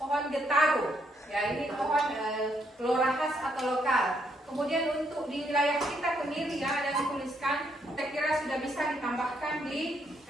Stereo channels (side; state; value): both; normal; correlation 0.73